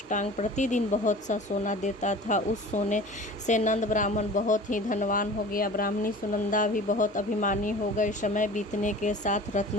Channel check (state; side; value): normal; both; correlation 0.40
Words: प्रतिदिन बहुत सा सोना देता था। उस सोने से नंद ब्राह्मण बहुत ही धनवान हो गया। ब्राह्मणी सुनंदा भी बहुत अभिमानी हो गई। समय बीतने के साथ